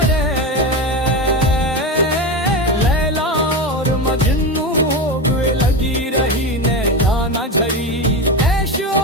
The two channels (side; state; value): both; normal; correlation 0.19